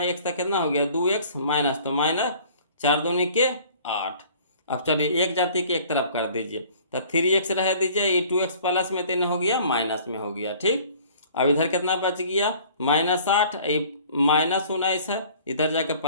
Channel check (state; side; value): inverted; both; correlation -0.51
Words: x तक कितना हो गया 2x माइनस, तो माइनस 4 दूनी के 8। अब चलिए एक जाति के एक तरफ कर दीजिए, तो 3x रह दीजिए, ये 2x प्लस में तीन हो गया माइनस में हो गया, ठीक। अब इधर कितना बच गया -8, माइनस 19 है, इधर जाकर